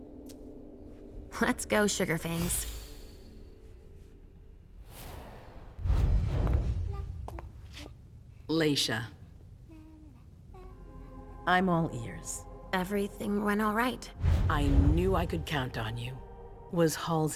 Let's go, Sugarfangs. Leisha. I'm all ears. Everything went all right. I knew I could count on you. Was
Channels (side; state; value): both; identical; correlation 1.00